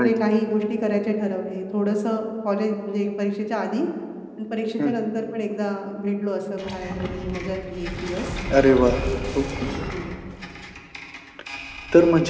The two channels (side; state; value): both; identical; correlation 1.00